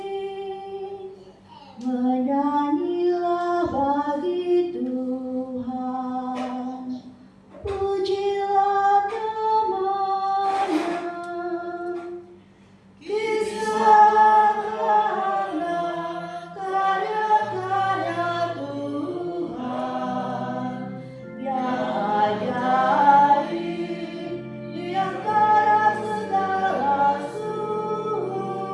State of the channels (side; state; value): both; identical; correlation 1.00